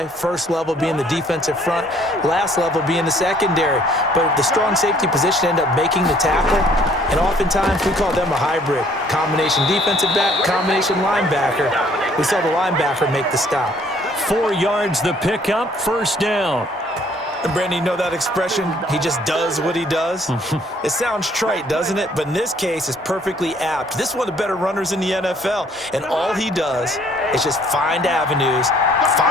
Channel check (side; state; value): both; normal; correlation 0.61